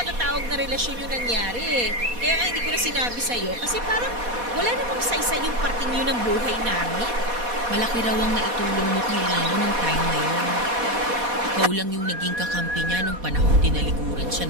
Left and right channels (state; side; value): late; left; 4.2 ms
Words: na relasyon yung nangyari eh. Kaya nga hindi ko na sinabi sa'yo kasi parang wala namang saysay yung parting yun ng buhay namin. Malaki raw ang naitulong mo kay Lino nung time na yun. Ikaw lang yung naging kakampi niya nung panahon tinalikuran